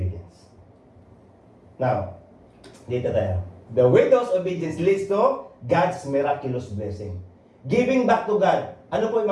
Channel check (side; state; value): both; identical; correlation 1.00